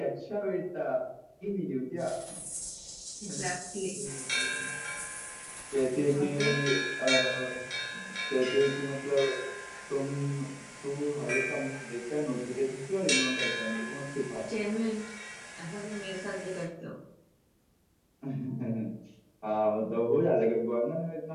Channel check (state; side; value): identical; both; correlation 1.00